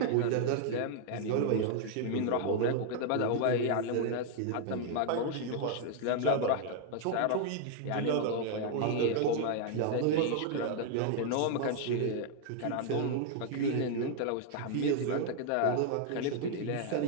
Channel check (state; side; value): different; both; correlation 0.00